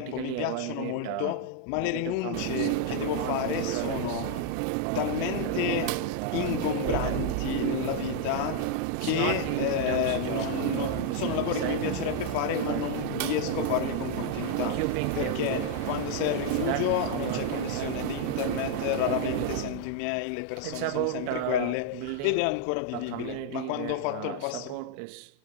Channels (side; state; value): both; different; correlation 0.00